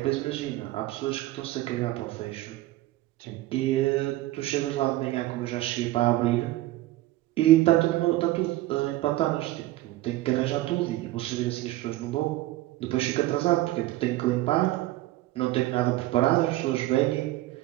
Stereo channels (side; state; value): left; quieter; 16.7 dB